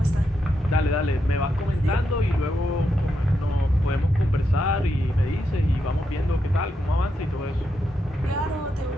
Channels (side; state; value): both; normal; correlation 0.83